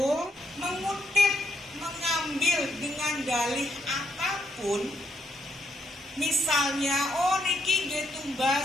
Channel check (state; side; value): normal; both; correlation 0.77